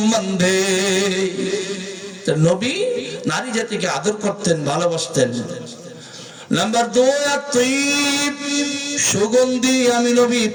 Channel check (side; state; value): both; identical; correlation 1.00